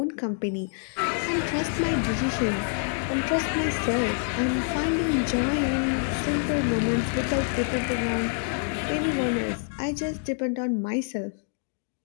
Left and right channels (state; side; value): silent; right; 60 dB below the other